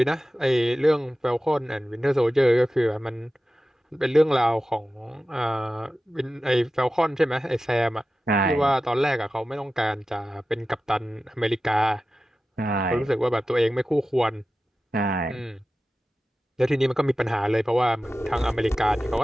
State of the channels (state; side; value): normal; both; correlation 0.94